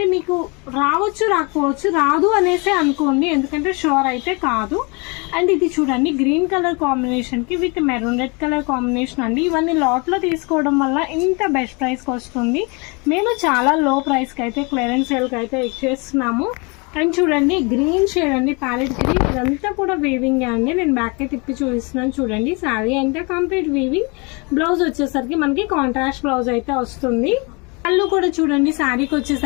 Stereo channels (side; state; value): right; quieter; 30.2 dB